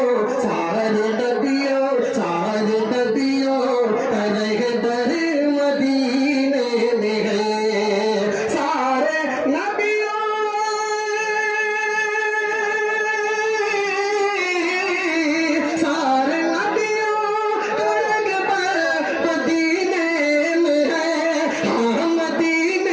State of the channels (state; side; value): identical; both; correlation 1.00